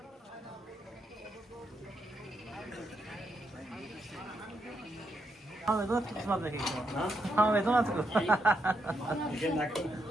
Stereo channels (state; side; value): normal; both; correlation 0.80